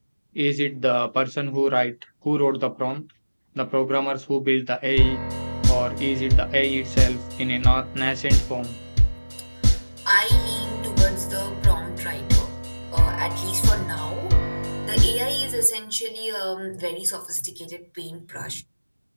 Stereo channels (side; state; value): both; inverted; correlation -1.00